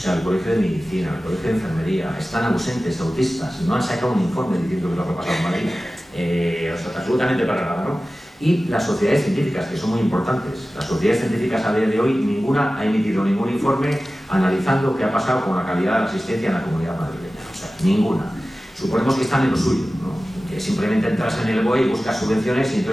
el colegio de medicina, el colegio de enfermería, están ausentes, autistas, no han sacado un informe diciendo que lo que ha pasado en Madrid. O sea, absolutamente para nada, ¿no? Y las sociedades científicas, que son muy importantes. Las sociedades científicas a día de hoy, ninguna ha emitido ningún informe analizando qué ha pasado con la calidad de la asistencia en la comunidad madrileña. O sea, ninguna. Suponemos que están en lo suyo, ¿no? Que simplemente entras en el BOE y buscas subvenciones y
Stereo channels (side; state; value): both; normal; correlation 0.96